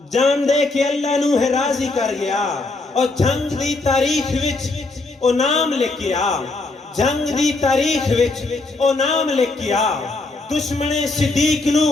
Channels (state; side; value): quieter; right; 3.3 dB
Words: جان دے کہ اللہ نو ہے راضی کر گیا، اور جنگ دی تاریخ وچ او نام لکھیا، جنگ دی تاریخ وچ او نام لکھیا، دشمن صدیق نو